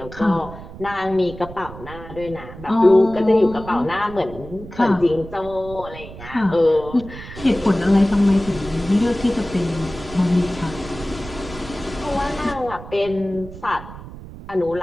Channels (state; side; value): noise; right; rumble, 14 dB below the sound